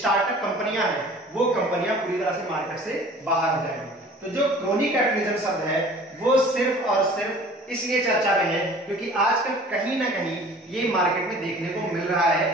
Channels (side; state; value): both; normal; correlation 0.47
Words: कंपनियां हैं, वो कंपनियां पूरी तरह से मार्केट से बाहर हो जाएंगी। तो जो क्रोनिक कैपिटलिज्म शब्द है वो सिर्फ और सिर्फ इसलिए चर्चा में है क्योंकि आजकल कहीं ना कहीं ये मार्केट में देखने को मिल रहा